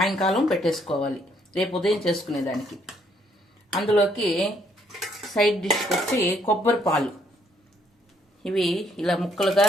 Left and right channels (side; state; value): both; normal; correlation 0.69